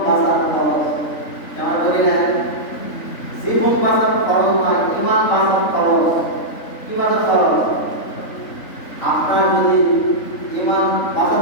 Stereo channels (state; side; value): late; right; 3.6 ms